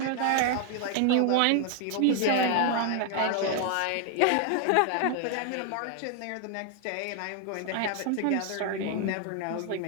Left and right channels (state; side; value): different; both; correlation 0.00